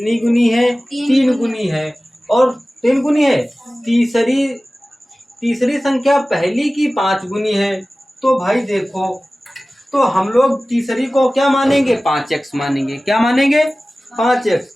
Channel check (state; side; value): normal; both; correlation 0.97